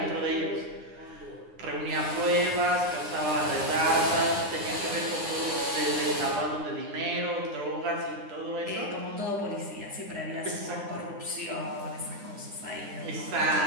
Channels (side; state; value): left; late; 9.8 ms